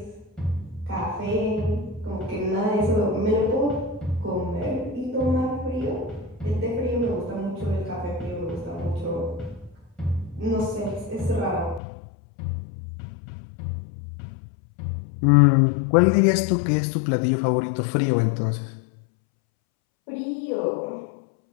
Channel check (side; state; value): right; drops out; at 11.8 s